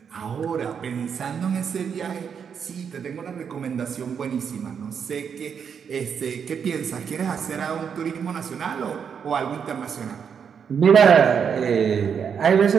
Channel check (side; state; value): left; quieter; 7.1 dB